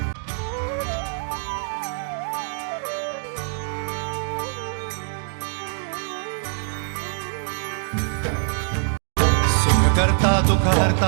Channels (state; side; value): silent; left; 63 dB below the other